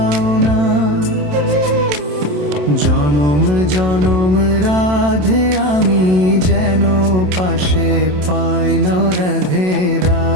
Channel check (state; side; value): late; left; 27 ms